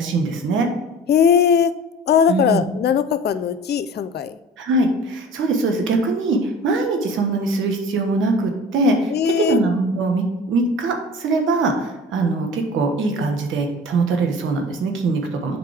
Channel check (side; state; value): both; normal; correlation 0.40